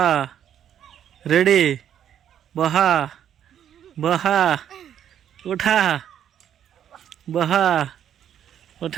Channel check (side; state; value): left; quieter; 9.8 dB